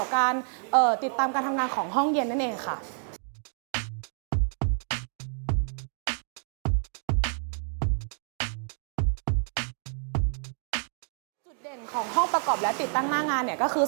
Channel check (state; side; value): silent; left; 57 dB below the other